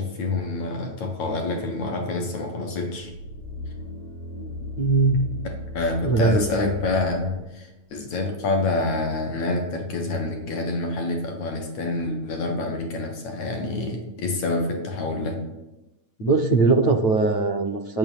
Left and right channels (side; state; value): right; late; 9.1 ms